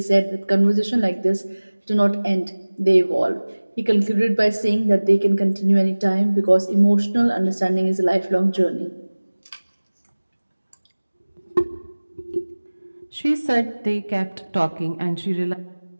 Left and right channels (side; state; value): both; inverted; correlation -1.00